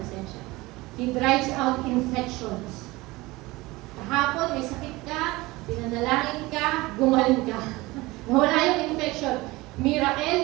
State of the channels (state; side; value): quieter; left; 21.0 dB